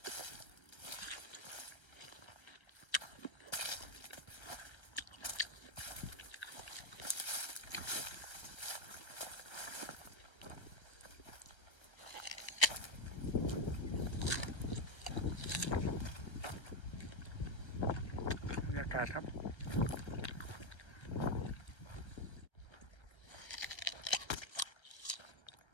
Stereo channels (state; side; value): late; right; 1.3 ms